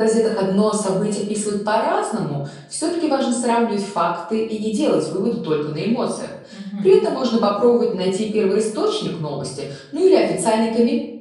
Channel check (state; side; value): identical; both; correlation 1.00